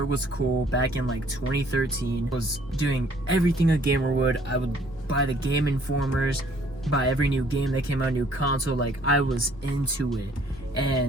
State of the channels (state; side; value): normal; both; correlation 0.60